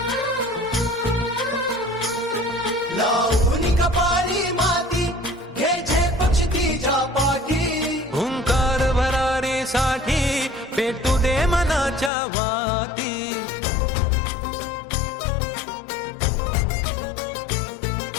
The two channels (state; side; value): drops out; right; at 12.1 s